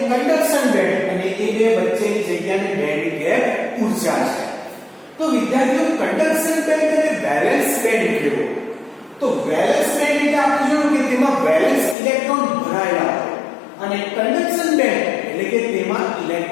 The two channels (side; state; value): right; drops out; at 12.0 s